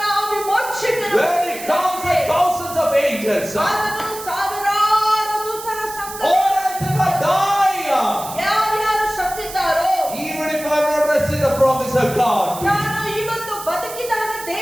ವಿಮೋಚಕನು When he comes with thousands of angels, ಆತನು ಸಾವಿರಾರು ದೂತರ ಸಂಘ or else if I die, ಯಾರ್ಯಾರು ಸತ್ತಿದ್ದಾರೋ, even if I am not receiving the promise of God, ನಾನು ಇವತ್ತು ಬದುಕಿದಾಗ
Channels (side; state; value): right; noise; hiss, 12 dB below the sound